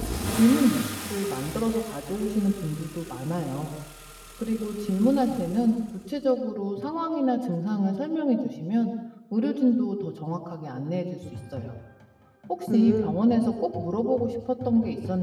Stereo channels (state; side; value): identical; both; correlation 1.00